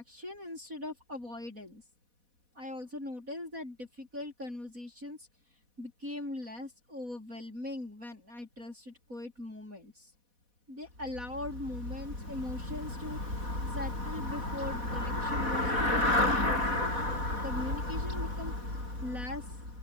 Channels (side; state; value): left; late; 4.1 ms